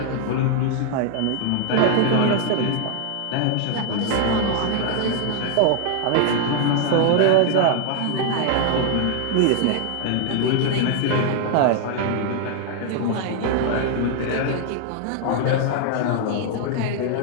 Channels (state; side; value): different; both; correlation 0.00